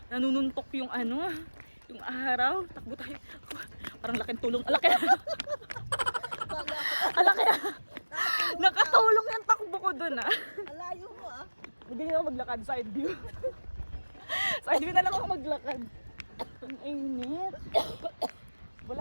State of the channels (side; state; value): both; inverted; correlation -1.00